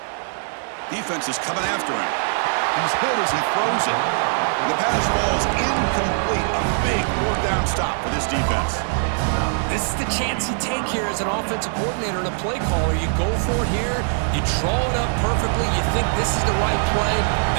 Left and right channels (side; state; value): left; silent; 64 dB below the other